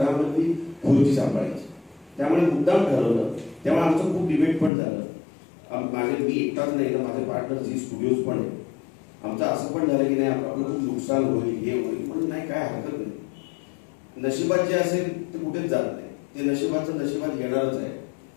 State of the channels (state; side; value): drops out; right; at 4.7 s